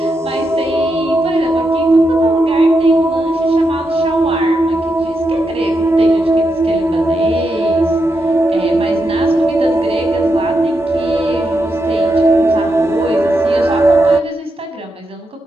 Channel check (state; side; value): normal; both; correlation 0.84